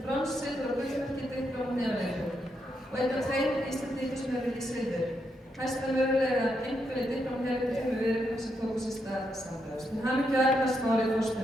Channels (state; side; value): normal; both; correlation 0.81